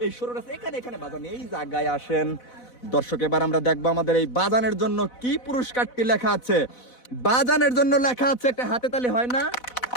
এই সরু রাস্তা এখানে বাজান এই জায়গায় আসেন। দর্শক এবার আমরা দেখবো আমাদের এই বাজানের জন্য কি পুরস্কারটি লেখা আছে। বাজানের জন্য লেখা আছে, একটা হাতে তালি হয় না,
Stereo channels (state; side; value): late; right; 4.0 ms